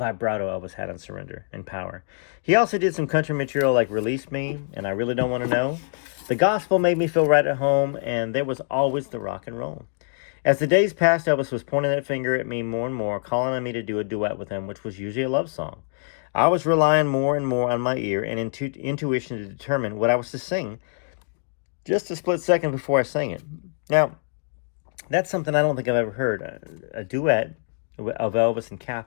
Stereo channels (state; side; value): silent; right; digital silence